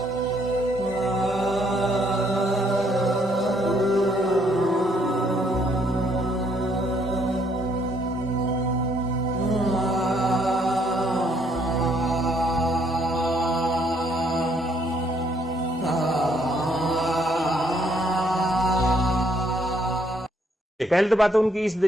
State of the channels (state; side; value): normal; both; correlation 0.68